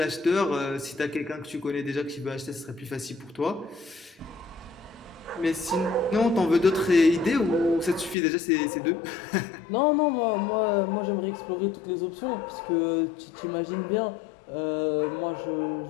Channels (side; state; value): right; drops out; at 8.2 s